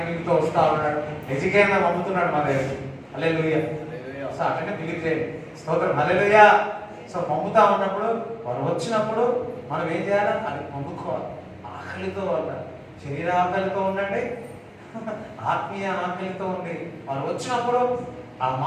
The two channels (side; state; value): both; identical; correlation 1.00